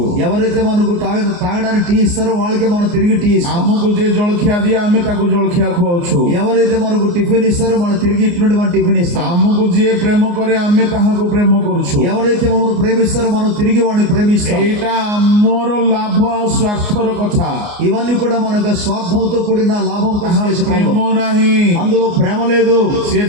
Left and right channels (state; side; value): late; left; 29 ms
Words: ఎవరైతే మనకు తాగడానికి టీ ఇస్తారో వాళ్ళకి మనం తిరిగి టీ ఇస్తాం. ଆମକୁ ଯିଏ ଜଳଖିଆ ଦିଏ ଆମେ ତାକୁ ଜଳଖିଆ ଖୁଆଉଛୁ। ఎవరైతే మనకు టిఫిన్ ఇస్తారో మనం తిరిగి ఇటువంటి మనం టిఫిన్ ఇస్తాం. ଆମକୁ ଯିଏ ପ୍ରେମ କରେ ଆମେ ତାହାକୁ ପ୍ରେମ କରୁଛୁ। ఎవరైతే మమ్మల్ని ప్రేమిస్తారో మనం తిరిగి వాడిని ప్రేమిస్తాం. ଏଇଟା ଆମର ଲାଭ ଆଉ ସ୍ୱାର୍ଥର କଥା। ఇవన్నీ కూడా మనకు స్వార్థంతో కూడిన లాభం కోసం ତାହା చేసే ପ୍ରେମ పనులు. ନାହିଁ। అందులో ప్రేమ లేదు. ସିଏ